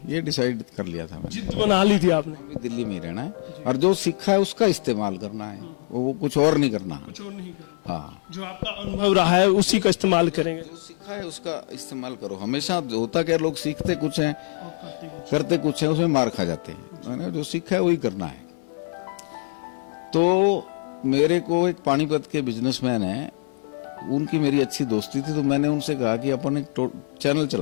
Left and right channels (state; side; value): silent; right; 57 dB below the other